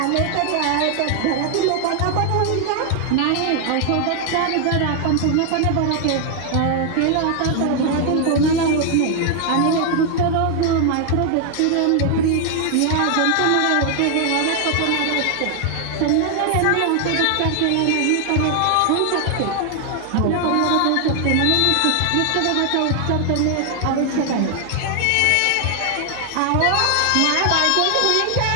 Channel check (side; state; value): both; different; correlation 0.00